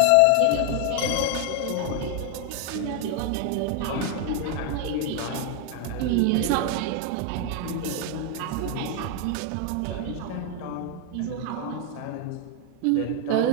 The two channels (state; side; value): different; both; correlation 0.00